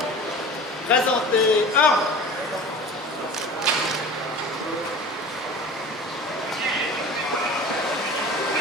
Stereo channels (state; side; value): normal; both; correlation 0.38